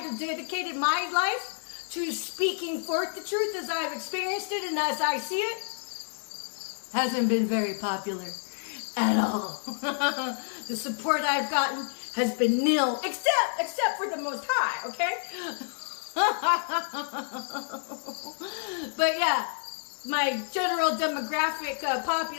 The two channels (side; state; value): right; silent; digital silence